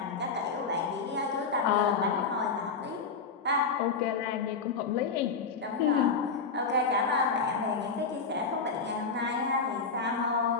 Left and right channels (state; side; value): quieter; right; 4.9 dB